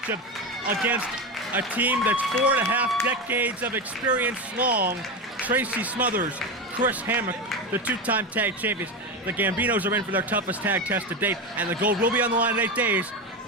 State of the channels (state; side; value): normal; both; correlation 0.17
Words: against a team that's 4.5 decades of experience long. Tracy Smothers, Chris Hammock, the 2-time tag champions. The Gambinos are in for their toughest tag test to date, and the gold will be on the line in 8 days.